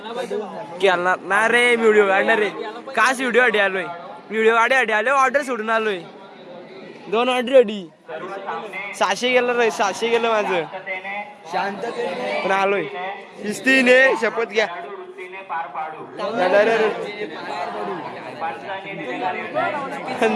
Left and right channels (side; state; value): both; identical; correlation 1.00